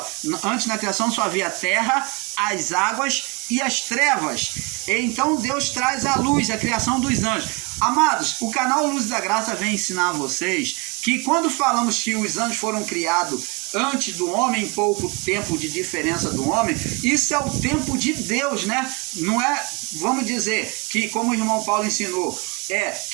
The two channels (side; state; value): left; quieter; 29.9 dB